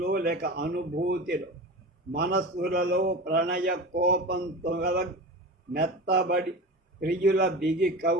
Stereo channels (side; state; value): both; normal; correlation 0.30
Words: లేక అనుభూతిలో మనస్సులలో ప్రణయ కోపంతో మెత్తబడి ప్రియుల బిగి